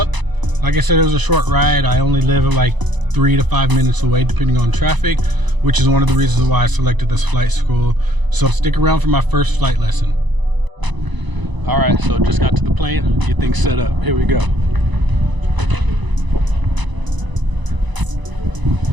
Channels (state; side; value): late; left; 1.0 ms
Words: Like I said, it was a short ride. I only live like 3 to 5 minutes away depending on traffic, which is one of the reasons why I selected this flight school. So stick around for my first flight lesson. Alright, so just got to the plane, get things set up. Here we go.